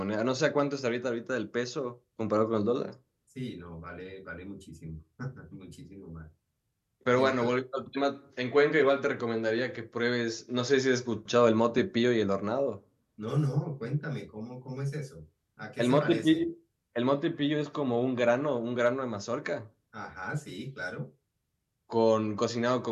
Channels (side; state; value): both; identical; correlation 1.00